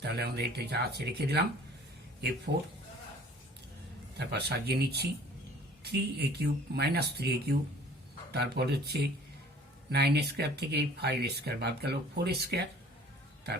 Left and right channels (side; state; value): both; normal; correlation 0.50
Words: আমরা এটা যা আছে রেখে দিলাম a4, তারপর সাজিয়ে নিচ্ছি 3a cube minus 3a cube, তারপর হচ্ছে 9a স্কোয়ার থেকে 5a স্কোয়ার বাদ গেল 4a স্কোয়ার,